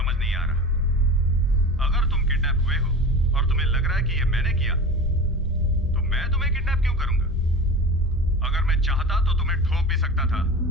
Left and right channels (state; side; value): normal; both; correlation 0.33